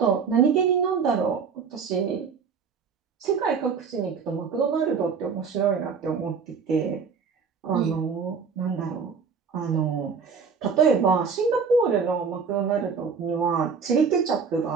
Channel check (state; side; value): quieter; left; 5.8 dB